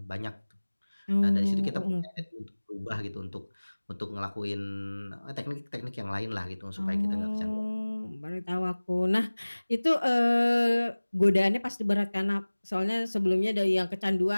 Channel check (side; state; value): both; inverted; correlation -1.00